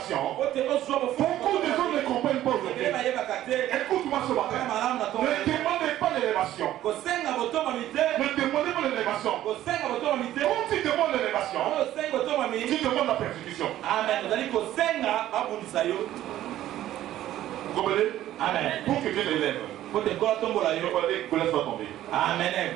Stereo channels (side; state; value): left; quieter; 13.3 dB